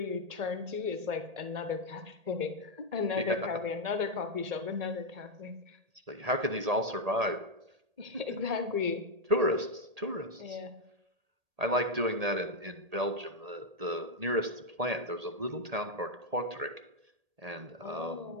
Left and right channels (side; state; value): left; late; 1.8 ms